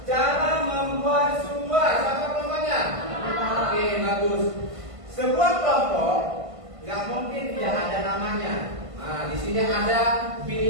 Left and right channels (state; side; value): late; left; 1.5 ms